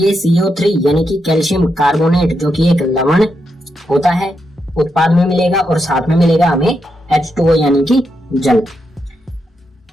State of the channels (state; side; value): normal; both; correlation 0.83